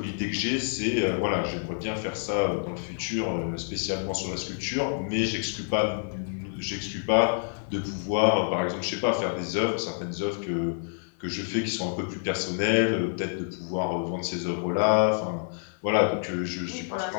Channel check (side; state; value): right; silent; 59 dB below the other